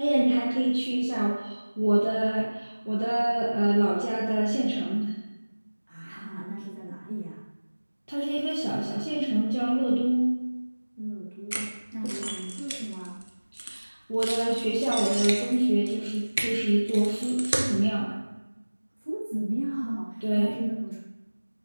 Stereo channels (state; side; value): inverted; both; correlation -1.00